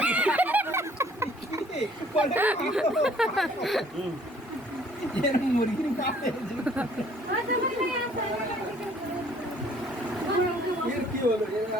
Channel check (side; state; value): both; normal; correlation 0.58